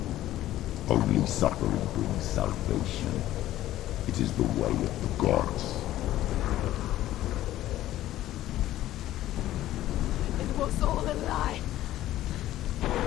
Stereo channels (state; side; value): quieter; right; 14.1 dB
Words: Only suffering brings salvation. It is the way of the gods. It was all a lie.